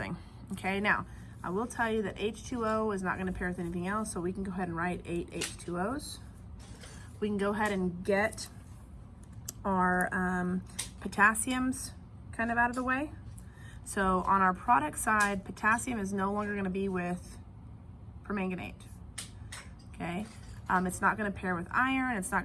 Okay, now I will tell you that H2O is not going to pair with anything else, so we can go ahead and write 8 H2Os. We can go ahead and get our potassiums kind of out of the way. So on our product side, potassium is no longer going to be with permanganate. Okay, it's not going to pair with iron, it's not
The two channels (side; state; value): both; identical; correlation 1.00